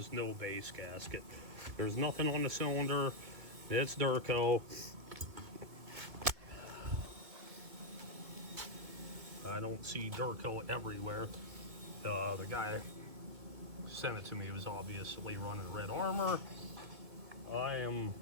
no base gasket. There's nothing on the cylinder. It's Durco. I don't see Durco everywhere. The guy sent it to me. He was obviously running Red Armor. I am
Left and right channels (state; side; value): late; left; 2.1 ms